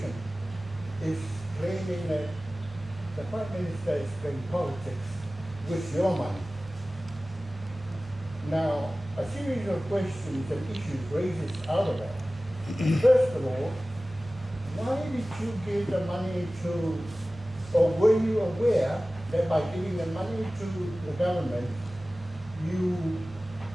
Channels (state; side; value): normal; both; correlation 0.97